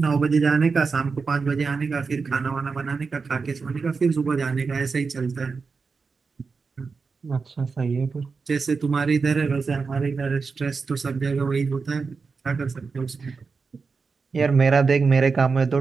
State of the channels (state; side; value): quieter; left; 4.8 dB